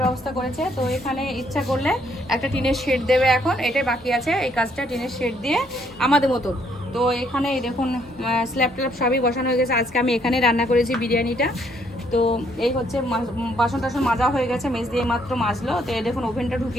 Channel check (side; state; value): both; normal; correlation 0.69